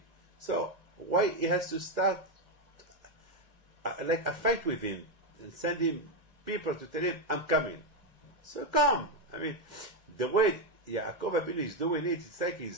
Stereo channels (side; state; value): left; late; 2.0 ms